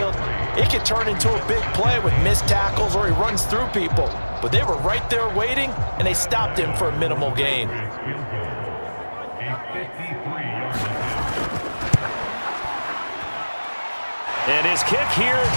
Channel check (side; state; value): both; inverted; correlation -1.00